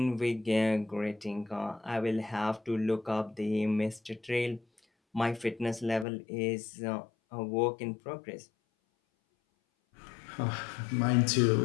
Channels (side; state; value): right; drops out; at 6.1 s